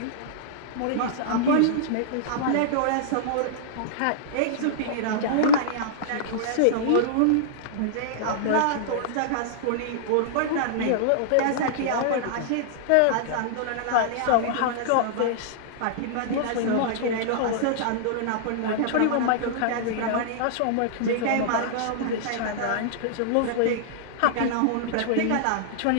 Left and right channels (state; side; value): different; both; correlation -0.02